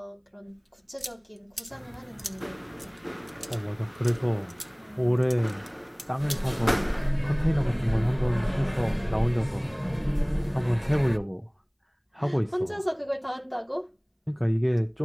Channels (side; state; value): both; identical; correlation 1.00